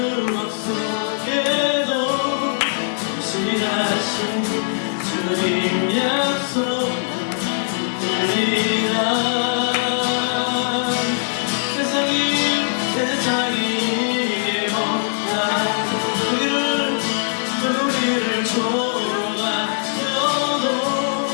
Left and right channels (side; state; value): right; silent; digital silence